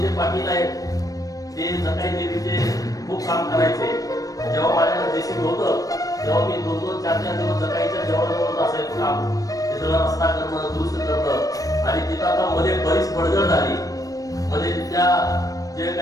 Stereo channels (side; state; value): right; late; 0.17 ms